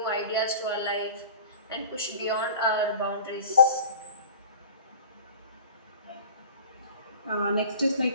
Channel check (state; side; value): inverted; both; correlation -0.41